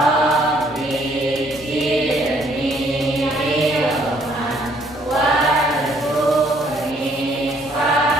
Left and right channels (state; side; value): normal; both; correlation 0.65